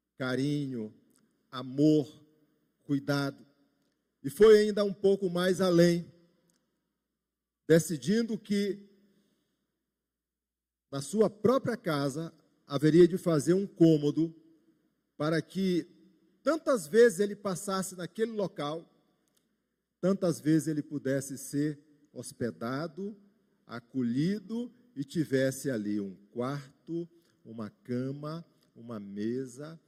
carinho, amor, cuidado. E foi ainda um pouco mais além, decidindo que na sua própria casa haveria de fazer um cômodo para que tantas vezes ele passasse naquele local, tantas vezes ele pudesse ser hospedado, acolhido e tivesse ali um quarto, uma cama, uma mesa,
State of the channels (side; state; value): both; identical; correlation 1.00